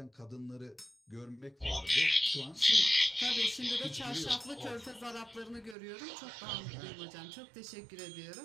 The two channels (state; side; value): drops out; left; at 5.8 s